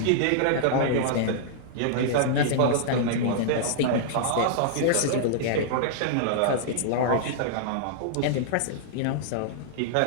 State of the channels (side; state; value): both; different; correlation -0.02